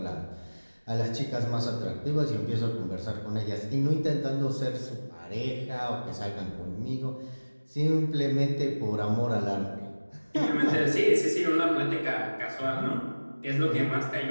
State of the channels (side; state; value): both; inverted; correlation -1.00